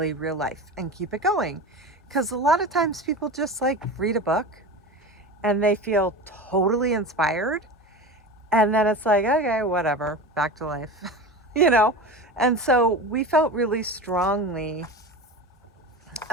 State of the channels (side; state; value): both; normal; correlation 0.29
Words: real life and keep it going. Because a lot of times people just like read a book and they feel totally inspired. And then it's like, okay, whatever, back to life, you know? And so we felt really strongly